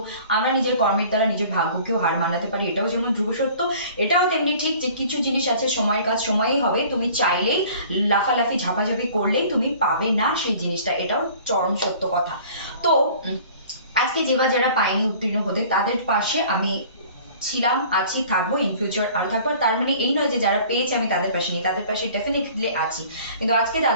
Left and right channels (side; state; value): both; inverted; correlation -0.48